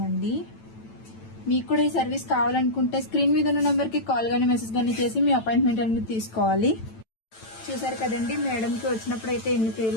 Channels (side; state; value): right; late; 9.0 ms